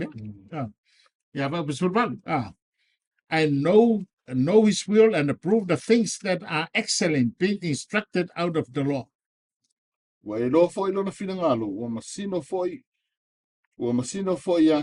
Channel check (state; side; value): identical; both; correlation 1.00